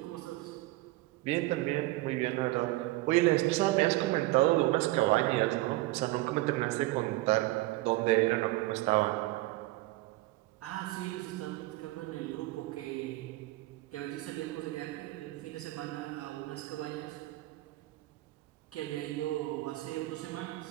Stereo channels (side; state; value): left; quieter; 19.1 dB